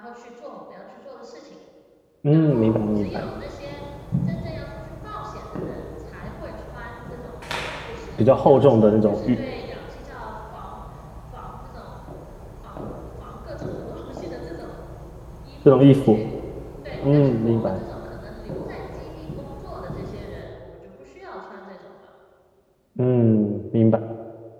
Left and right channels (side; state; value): both; identical; correlation 1.00